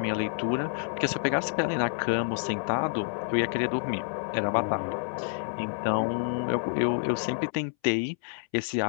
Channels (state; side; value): silent; right; 59 dB below the other